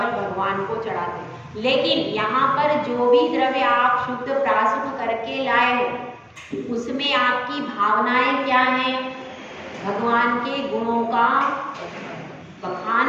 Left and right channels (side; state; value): both; identical; correlation 1.00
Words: भगवान को चढ़ाते हैं। लेकिन यहाँ पर जो भी द्रव्य आप शुद्ध प्राशुद्ध करके लाए हो, उसमें आपकी भावनाएं क्या हैं, भगवान के गुणों का बखान